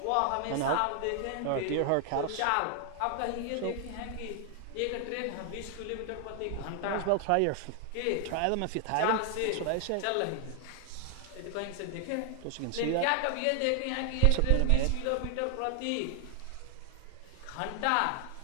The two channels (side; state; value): both; different; correlation 0.00